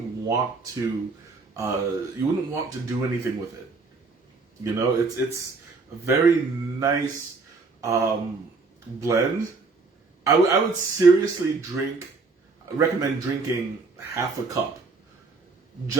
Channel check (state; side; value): quieter; left; 4.1 dB